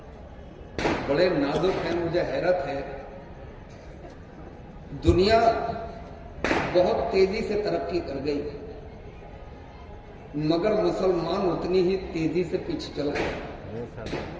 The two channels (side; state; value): both; identical; correlation 1.00